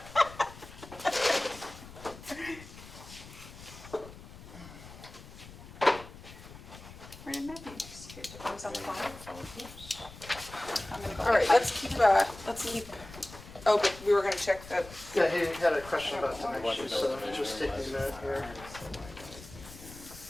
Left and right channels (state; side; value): noise; left; rumble, 17 dB below the sound